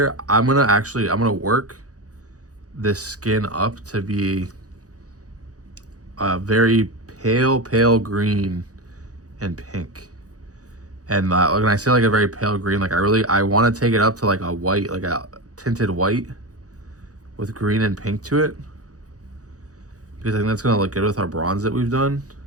I'm gonna work this skin up to be a very pale green and pink. And when I say like a very pale green, like I want to take it up to like a white, like a tinted white with green and pink to it, because I think that's gonna look good with our bronze that we've done.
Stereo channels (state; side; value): late; left; 0.67 ms